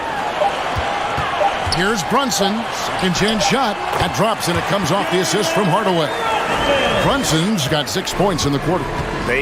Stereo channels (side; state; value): both; identical; correlation 1.00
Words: Here's Brunson. Second chance shot. That drops, and it comes off the assist from Hardaway. Brunson's got 6 points in the quarter.